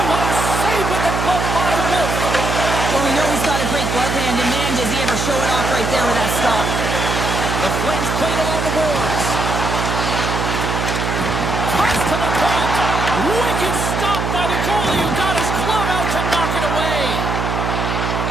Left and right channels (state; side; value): noise; right; hum, 2 dB below the sound